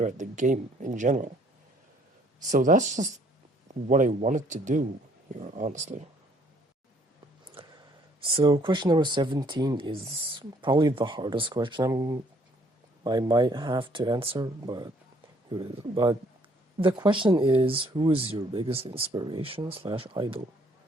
at the game in general. So that's just what I wanted to do here, honestly. So question number 17 is probably the hardest question I might have to answer, but here it is. But the question is, who is your biggest inspiration / idol?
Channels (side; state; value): both; normal; correlation 0.63